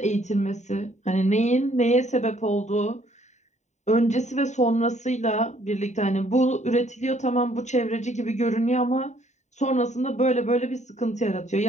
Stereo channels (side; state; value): right; late; 0.34 ms